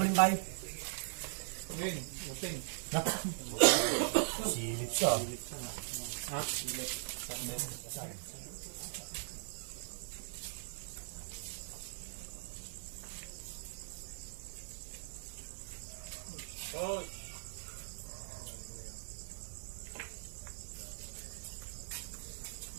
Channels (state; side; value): silent; left; digital silence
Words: balimbay? Uting. Uting. Silip siya. Ha? Silip. Oh,